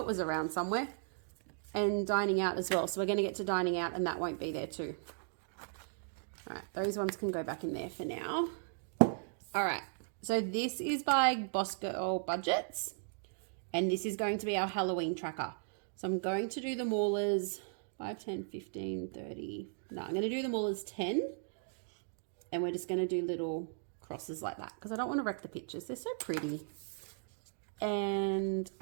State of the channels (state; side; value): silent; left; digital silence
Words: was around somewhere. And dining out as well. So we're going to get to dining out and that won't be there too. All right, those ones can go back in there for now. All right, so this is by Boss Girl Budgets, and this is going to be our Halloween tracker. So I'm going to do them all as 5, 10, 15, 30. No, I'm going to do them all as 10, and we're just going to do little crosses like that because I don't want to wreck the pictures. They're so pretty. And